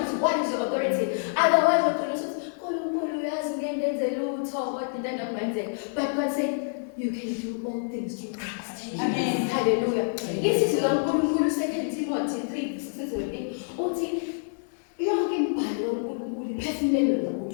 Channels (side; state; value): right; silent; digital silence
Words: what is your authority. Otherwise, but God said, you can do all things through Christ. Amen. Hallelujah. This is 2 Timothy 3:16.